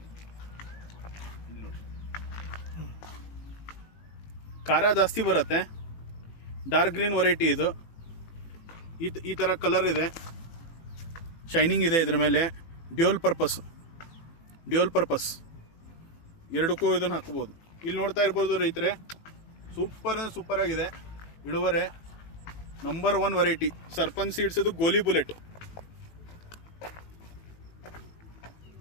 ಖಾರ ಜಾಸ್ತಿ ಬರುತ್ತೆ. ಡಾರ್ಕ್ ಗ್ರೀನ್ ವೆರೈಟಿ ಇದು. ಈ ಥರ ಕಲರ್ ಇದೆ, ಶೈನಿಂಗ್ ಇದೆ ಇದ್ರ ಮೇಲೆ. ಡ್ಯೂಯಲ್ ಪರ್ಪಸ್ ಎರಡಕ್ಕೂ ಇದನ್ನು ಹಾಕ್ಬೋದು. ಇಲ್ಲಿ ನೋಡ್ತಾ ಇರ್ಬೋದು ರೈತರೆ, ಸೂಪರ್ ಆಗಿದೆ ಇಳುವರೆ. ನಂಬರ್ 1 ವೆರೈಟಿ ಸರ್ಪನ್ ಸೀಡ್ಸ್ ಇದು ಗೋಲಿ ಬುಲೆಟ್.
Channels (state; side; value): late; right; 18 ms